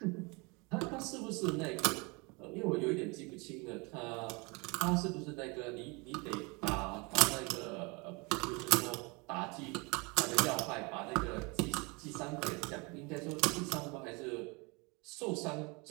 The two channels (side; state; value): left; quieter; 28.6 dB